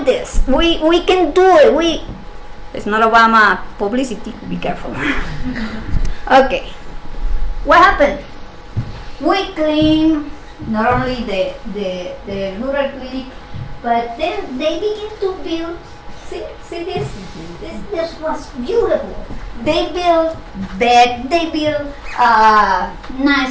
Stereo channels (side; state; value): both; identical; correlation 1.00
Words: this. We can do it. It's not Obama publicity. Be careful. Okay. What happened? We clean not only the rural clinic, but then they begin to build. See this? This was beautiful. They built bed, they built